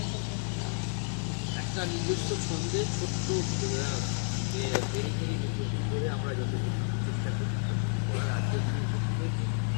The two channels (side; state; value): right; silent; digital silence